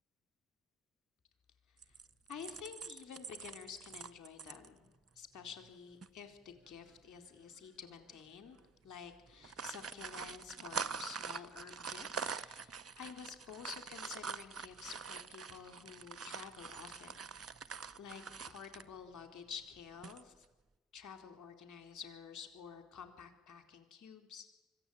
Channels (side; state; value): both; normal; correlation 0.35